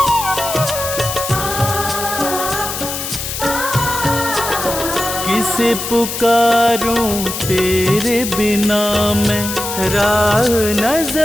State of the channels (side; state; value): left; noise; hiss, 5 dB below the sound